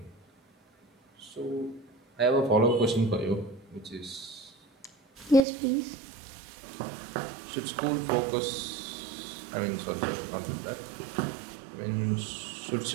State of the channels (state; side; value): drops out; left; at 5.4 s